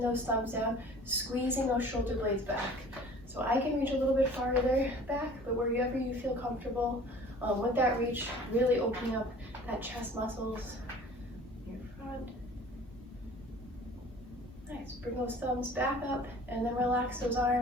those thumbs down, squeezing those shoulder blades back. So I can reach a little bit farther back, but wherever you feel comfortable with that reach, really opening up that chest muscles, your front. Nice, bring those thumbs back up and then relax those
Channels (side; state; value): both; normal; correlation 0.47